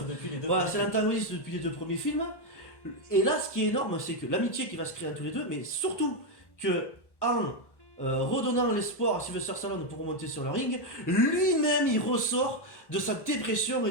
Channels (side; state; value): right; late; 1.1 ms